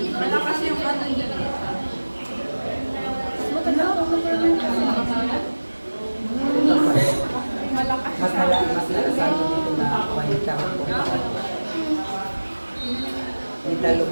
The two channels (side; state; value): both; inverted; correlation -1.00